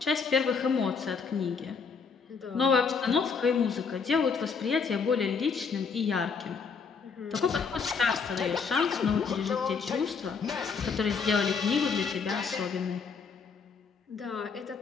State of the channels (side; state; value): right; quieter; 5.5 dB